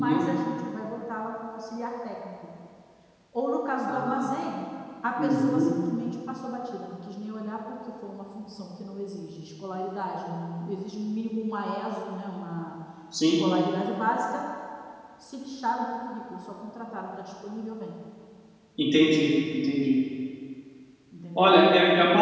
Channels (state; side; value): identical; both; correlation 1.00